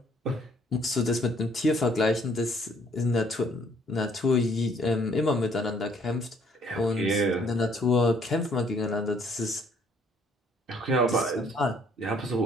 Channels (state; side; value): normal; both; correlation 0.63